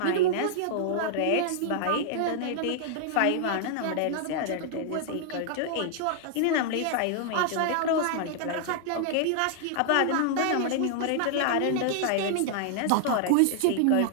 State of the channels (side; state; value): both; different; correlation -0.01